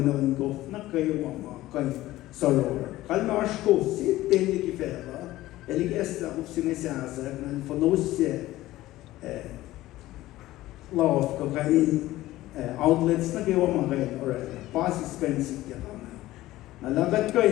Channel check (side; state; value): right; quieter; 16.3 dB